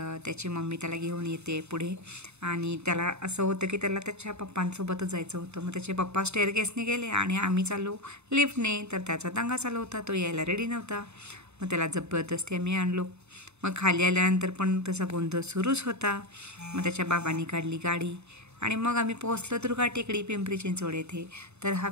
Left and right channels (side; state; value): left; late; 0.81 ms